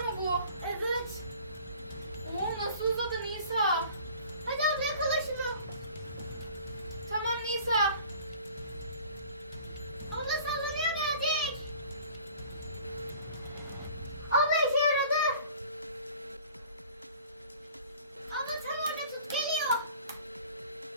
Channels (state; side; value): inverted; both; correlation -0.47